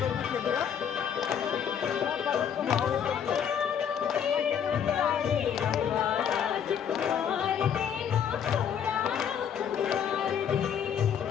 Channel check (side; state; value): right; quieter; 8.2 dB